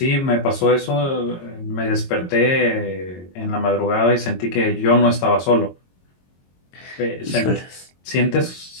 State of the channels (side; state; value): right; late; 22 ms